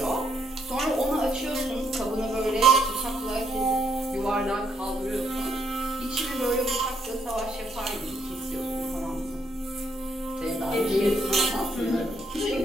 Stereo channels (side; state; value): both; normal; correlation 0.74